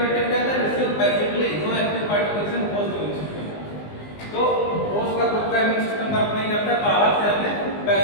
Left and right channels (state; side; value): late; right; 19 ms